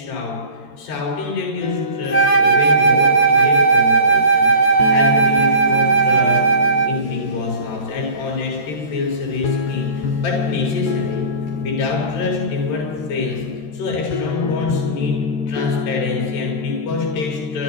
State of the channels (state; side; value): late; right; 13 ms